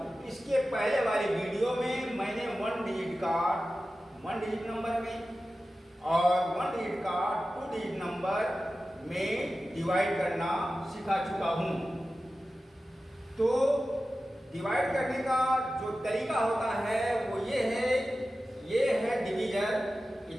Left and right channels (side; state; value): both; normal; correlation 0.94